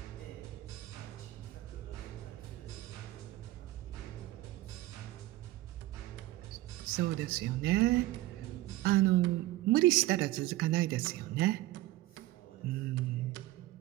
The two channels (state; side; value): quieter; left; 17.0 dB